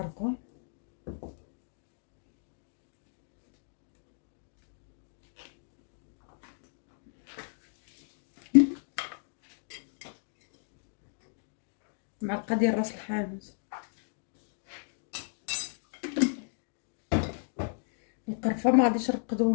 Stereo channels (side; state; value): right; silent; digital silence